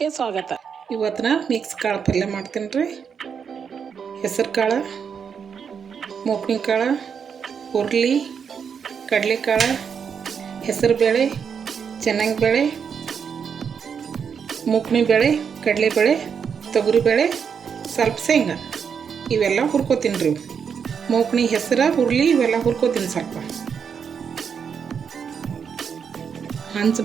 ಸ್ವಾಗತ. ಇವತ್ತಿನ ಮಿಕ್ಸ್ ಕಾಳು ಪಲ್ಯ ಮಾಡ್ತೀನಿ ರೀ. ಹೆಸರು ಕಾಳು, ಮೂಕ್ನಿ ಕಾಳು, ಹುರ್ಲಿ, ಕಡಲೆಕಾಳು, ಹೆಸರು ಬೇಳೆ, ಚೆನ್ನಾಗಿ ಬೇಳೆ, ಮೂಕ್ನಿ ಬೇಳೆ, ಕಡಲೆಬೇಳೆ, ತೊಗರಿಬೇಳೆ, ಸ್ವಲ್ಪ ಶೇಂಗಾ ಇವೆಲ್ಲ ಹುರ್ಕೋತೀನಿ ರೀ. ಮೂಕ್ನಿ, ಹೆಸರು, ಹುರ್ಲಿ ಇವೆಲ್ಲ ಹುರ್ಕೋತೀನಿ. ಸ್ವಲ್ಪ ಹಂಚು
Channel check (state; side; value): quieter; left; 6.8 dB